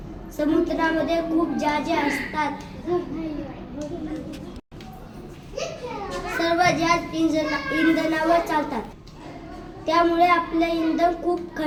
समुद्रामध्ये खूप जहाजे असतात. सर्व जहाज इंधनावर चालतात. त्यामुळे आपलं इंधन खूप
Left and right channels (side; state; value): both; identical; correlation 1.00